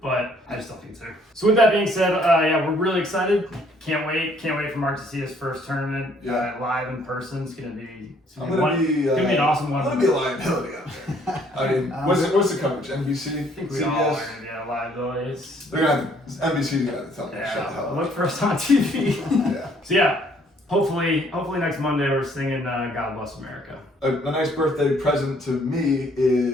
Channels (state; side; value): normal; both; correlation 0.63